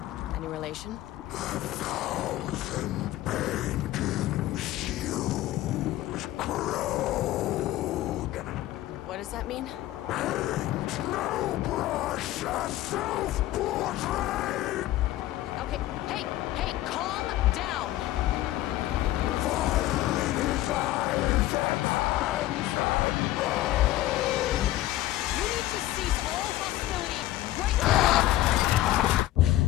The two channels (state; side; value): quieter; right; 15.2 dB